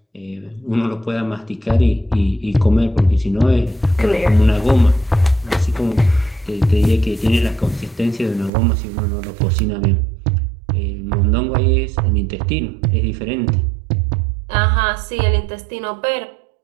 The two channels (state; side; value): drops out; left; at 8.5 s